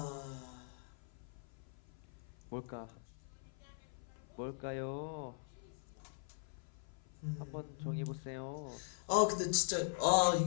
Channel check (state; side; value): silent; right; 50 dB below the other